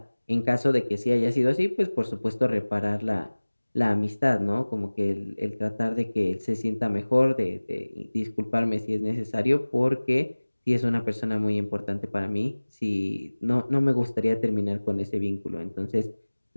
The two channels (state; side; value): inverted; both; correlation -1.00